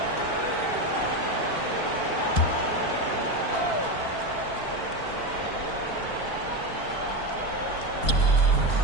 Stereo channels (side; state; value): right; late; 4.5 ms